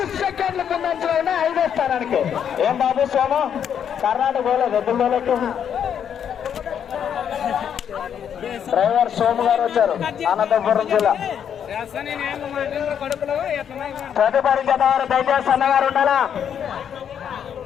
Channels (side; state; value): right; quieter; 8.5 dB